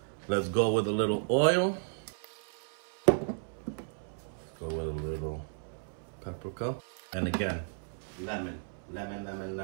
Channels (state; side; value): silent; left; 55 dB below the other